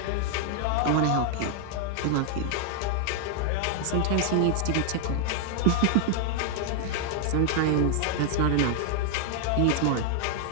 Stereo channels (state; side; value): different; both; correlation 0.00